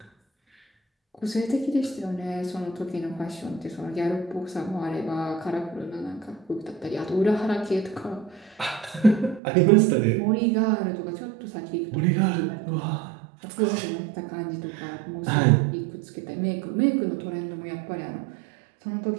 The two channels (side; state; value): left; drops out; at 9.4 s